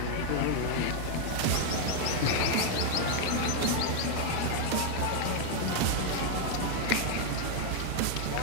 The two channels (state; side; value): different; both; correlation 0.00